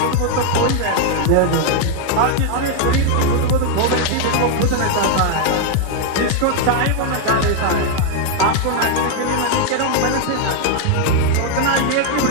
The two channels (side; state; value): both; different; correlation 0.00